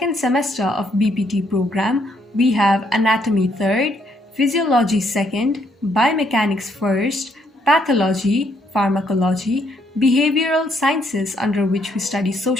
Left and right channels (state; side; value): normal; both; correlation 0.72